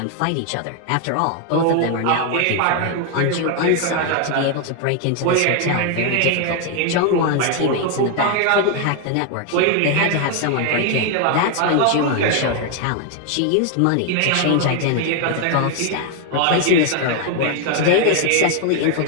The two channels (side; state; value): both; different; correlation 0.01